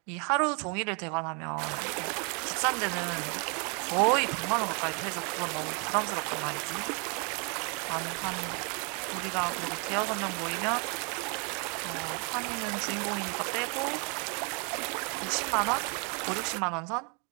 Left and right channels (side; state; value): left; quieter; 35.2 dB